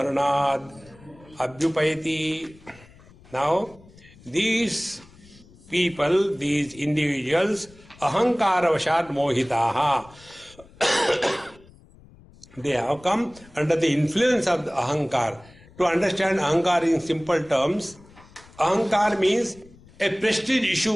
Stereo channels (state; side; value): noise; left; rumble, 24 dB below the sound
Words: abhyupayati. Now, these people, these individuals, ahankara vashat mohitaha, they have come under the influence of the ahankar. To understand ahankar in simple terms, ahankar means a prestige